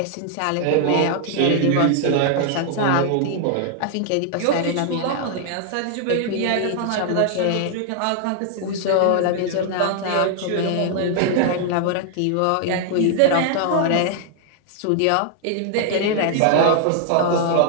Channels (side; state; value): both; different; correlation 0.00